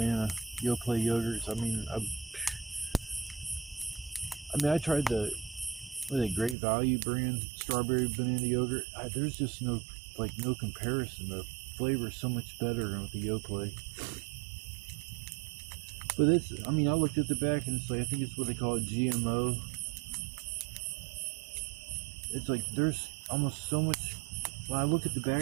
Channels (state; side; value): drops out; left; at 6.6 s